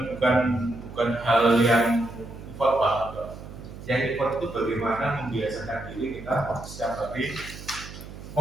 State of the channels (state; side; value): noise; right; hum, 14 dB below the sound